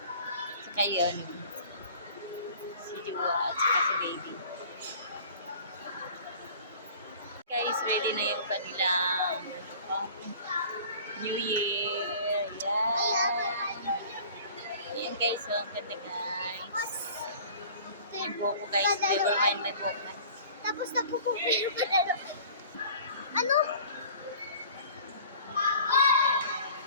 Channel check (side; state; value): both; inverted; correlation -0.46